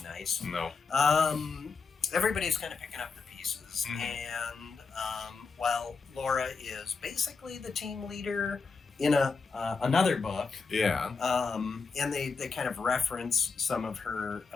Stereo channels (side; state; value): right; quieter; 4.8 dB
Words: nice. No. Everybody's kind of picking up the pieces, and while Laura is basically the team leader in another book, and they kind of reference some of